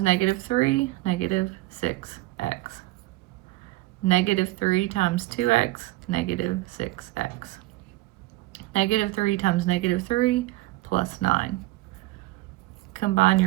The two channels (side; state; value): left; quieter; 18.9 dB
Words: negative 3, negative 6x. Negative 3 times 2x, negative 6x. Negative 3 times negative 3 plus 9. Combine